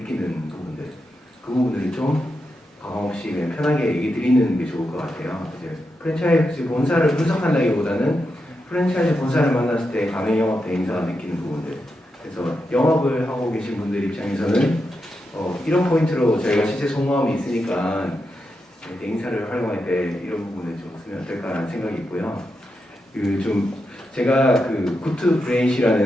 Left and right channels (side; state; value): both; normal; correlation 0.86